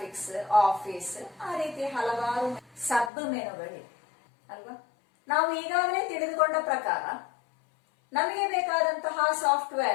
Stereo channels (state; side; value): drops out; right; at 3.1 s